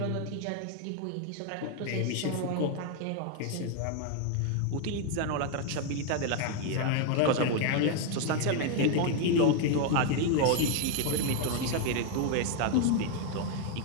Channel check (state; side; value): different; both; correlation 0.01